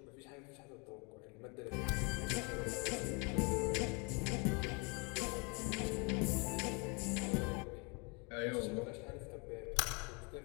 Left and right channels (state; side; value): quieter; right; 32.2 dB